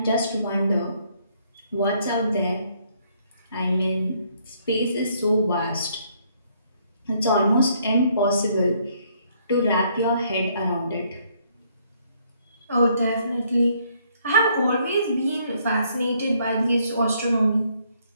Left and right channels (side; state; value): both; inverted; correlation -0.68